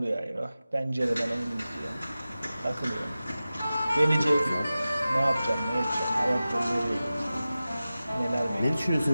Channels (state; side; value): inverted; both; correlation -0.95